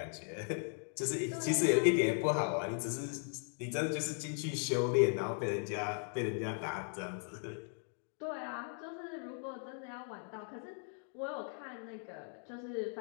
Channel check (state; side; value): silent; right; 53 dB below the other